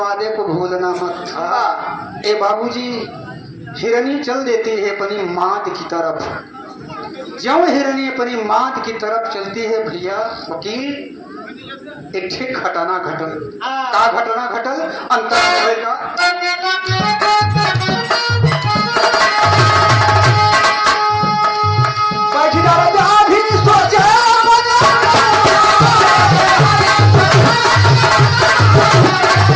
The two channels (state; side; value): identical; both; correlation 1.00